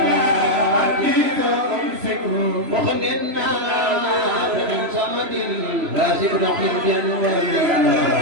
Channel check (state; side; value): late; left; 3.0 ms